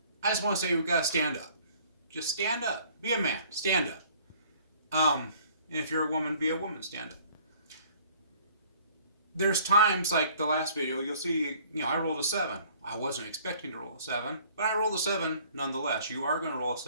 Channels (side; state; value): both; inverted; correlation -0.55